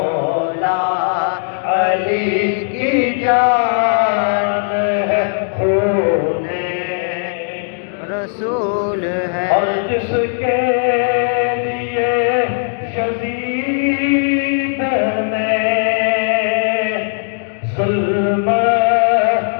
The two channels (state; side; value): silent; right; digital silence